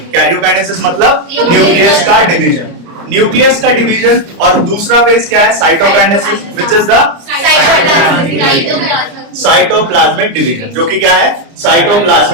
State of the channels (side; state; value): left; late; 30 ms